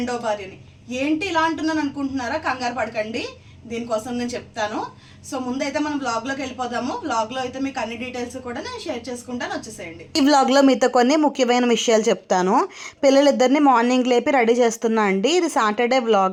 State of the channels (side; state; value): both; identical; correlation 1.00